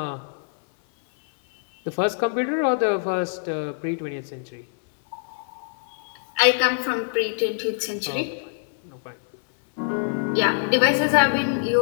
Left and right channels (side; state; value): right; silent; 58 dB below the other